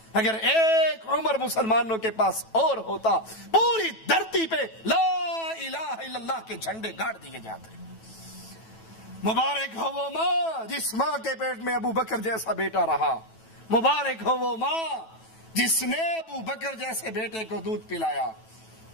اگر ایک عمر مسلمانوں کے پاس اور ہوتا پوری دھرتی پہ لا الہ الا اللہ کے جھنڈے گاڑ دیے جاتے۔ مبارک ہو وہ ماں جس ماں کے پیٹ میں ابو بکر جیسا بیٹا رہا، مبارک ہو وہ ماں جس نے ابو بکر جیسے بیٹے کو دودھ پلایا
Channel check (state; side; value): late; right; 9.1 ms